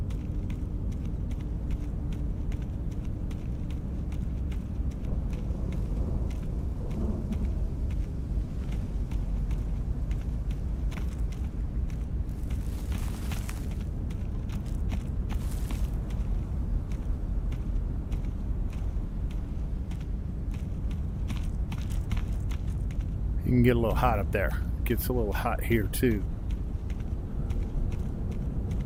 You can get a little hot up there. Gets a little hot here too.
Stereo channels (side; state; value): both; identical; correlation 1.00